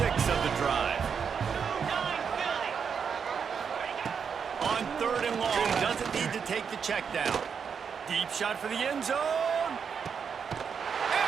of the drive. On 3rd and long, doesn't need to take the check down. Deep shot for the end zone.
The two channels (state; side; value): quieter; left; 6.6 dB